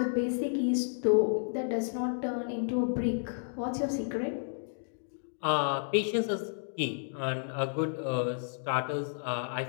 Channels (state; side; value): silent; right; digital silence